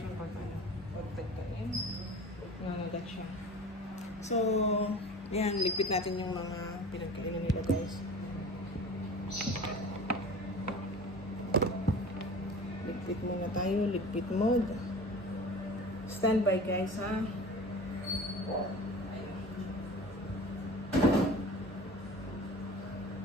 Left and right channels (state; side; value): normal; both; correlation 0.38